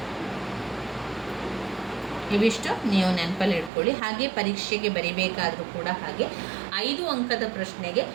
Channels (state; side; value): drops out; left; at 3.7 s